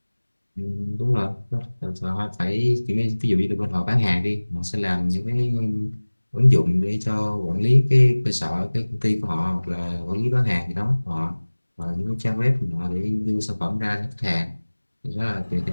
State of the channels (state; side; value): inverted; both; correlation -1.00